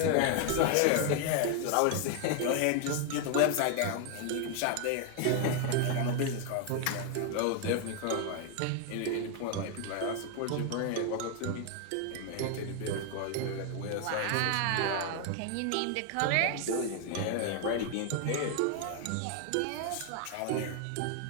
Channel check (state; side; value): different; both; correlation 0.00